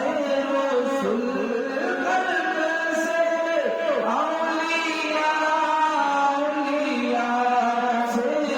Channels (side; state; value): both; identical; correlation 1.00